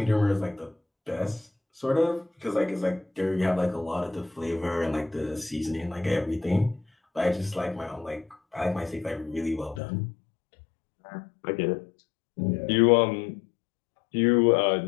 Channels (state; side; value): drops out; right; at 9.8 s